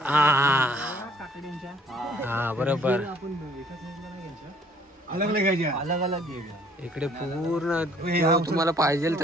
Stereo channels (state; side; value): normal; both; correlation 0.59